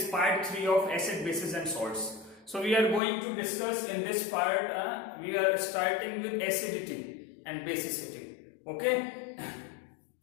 part 3 of acid, bases and salts. So we are going to discuss in this part, we are starting with acidity and basicity. Okay?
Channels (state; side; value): drops out; right; at 3.0 s